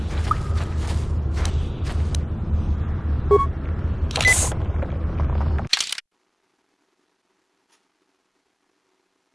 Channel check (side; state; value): both; identical; correlation 1.00